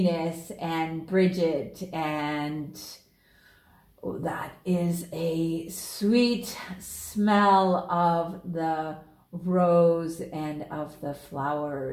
and Bridget, and that is a sweet smell of the rose and of the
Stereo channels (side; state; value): both; identical; correlation 1.00